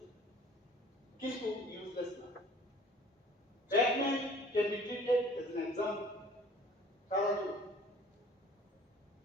কিন্তু ইউজলেস না। Batman can be treated as an example. সারা জীবন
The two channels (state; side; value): normal; both; correlation 0.51